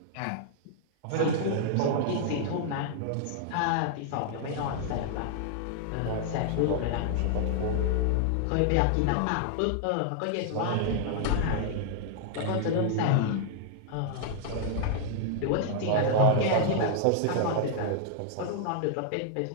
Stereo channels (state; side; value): different; both; correlation -0.01